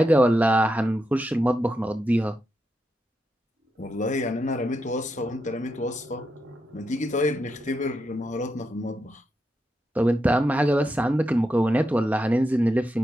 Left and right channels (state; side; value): normal; both; correlation 0.85